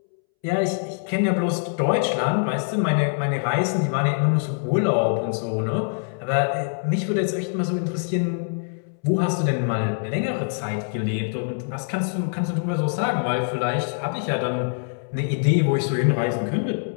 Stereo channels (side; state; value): right; silent; 63 dB below the other